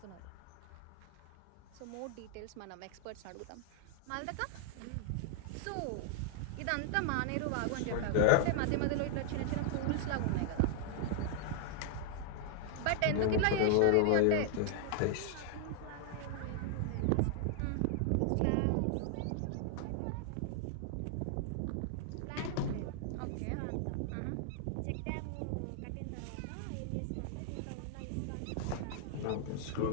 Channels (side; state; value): both; different; correlation 0.00